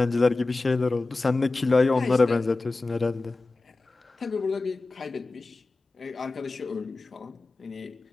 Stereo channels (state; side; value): quieter; right; 3.4 dB